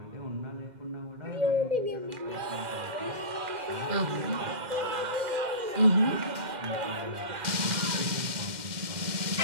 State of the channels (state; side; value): late; left; 2.1 ms